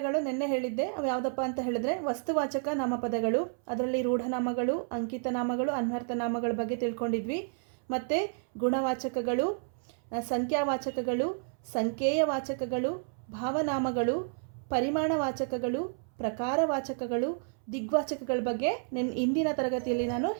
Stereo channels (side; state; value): left; silent; 57 dB below the other